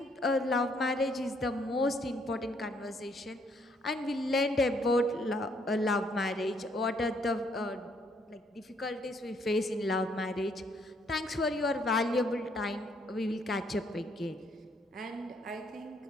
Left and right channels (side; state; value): both; normal; correlation 0.69